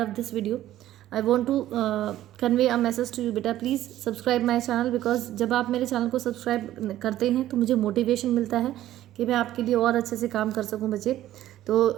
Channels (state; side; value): quieter; left; 13.5 dB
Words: this video, I want to convey a message to you बेटा, please subscribe my channel, because जब आप मेरे चैनल को सब्सक्राइब करते हैं तो मुझे मोटिवेशन मिलता है कि मैं आपके लिए और अच्छे से काम कर सकूं बच्चे। तो